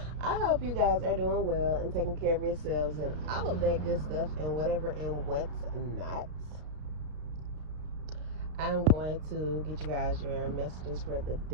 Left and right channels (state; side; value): late; left; 33 ms